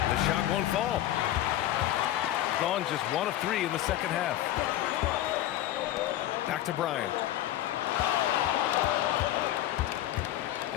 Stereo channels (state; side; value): quieter; right; 13.4 dB